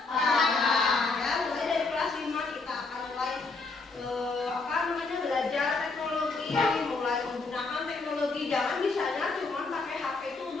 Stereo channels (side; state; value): right; quieter; 3.9 dB